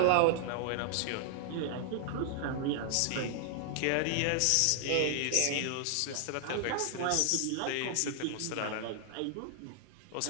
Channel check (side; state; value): both; different; correlation -0.01